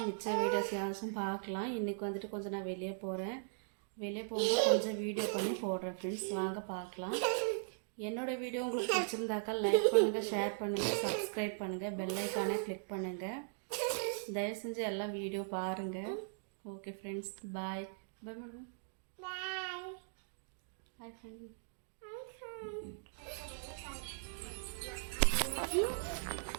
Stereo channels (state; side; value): silent; left; digital silence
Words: மிச்ச வீடியோஸ் யாரும் பார்க்கலாம். இன்றைக்கி வந்துட்டு கொஞ்சம் நான் வெளியே போகிறேன். வெளியே போகும்போது கொஞ்சம் வீடியோ பண்ணி போடுறேன் ஃப்ரெண்ட்ஸ். வாங்க பார்க்கலாம். என்னோடய வீடியோ உங்களுக்கு பிடிச்சிருந்தாக்கா லைக் பண்ணுங்கள், ஷேர் பண்ணுங்கள், சப்ஸ்கிரைப் பண்ணுங்கள், பெல் ஐக்கானை கிளிக் பண்ணுங்கள். தயவு செஞ்சு எல்லாம் வீடியோ பாருங்கள். Okay friends, bye. Bye madam. Bye friends.